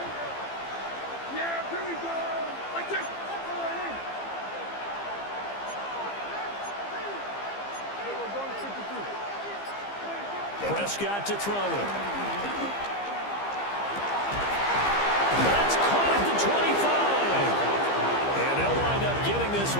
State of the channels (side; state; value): right; late; 15 ms